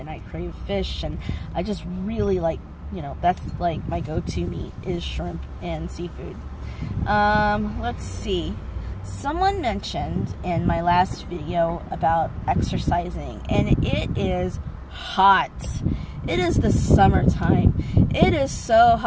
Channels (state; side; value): identical; both; correlation 1.00